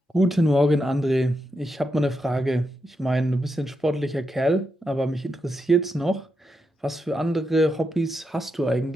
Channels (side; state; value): both; normal; correlation 0.85